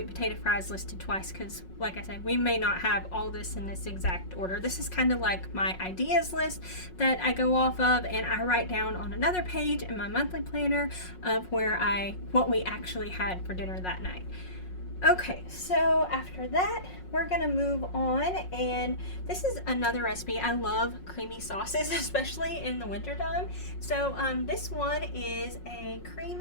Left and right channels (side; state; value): right; late; 5.5 ms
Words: potato fries listed twice, because like I said, we may not have all this in this exact order. This is kind of like my ideas list that I go off of, and I write down on another page in my monthly planner of what we actually had for dinner that night. Okay, so after that, we're gonna move on, and this is another recipe. I love creamy sauces, especially in the wintertime. So this one is a